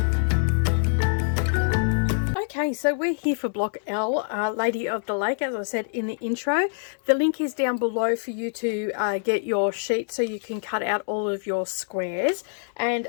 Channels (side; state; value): right; silent; digital silence